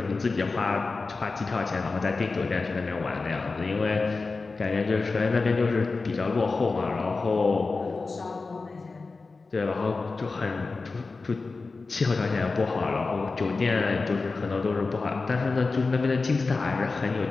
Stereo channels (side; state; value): right; quieter; 3.9 dB